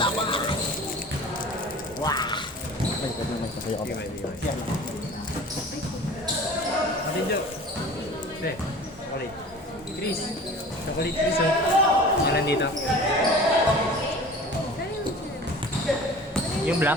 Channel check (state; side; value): normal; both; correlation 0.41